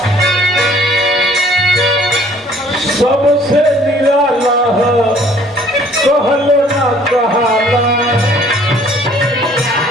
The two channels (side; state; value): both; normal; correlation 0.57